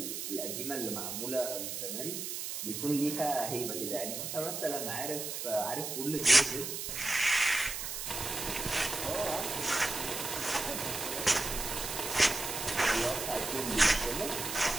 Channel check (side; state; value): right; noise; hiss, 5 dB below the sound